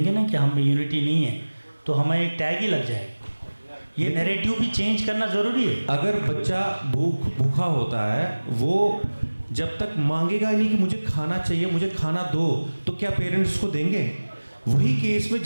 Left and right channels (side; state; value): both; inverted; correlation -1.00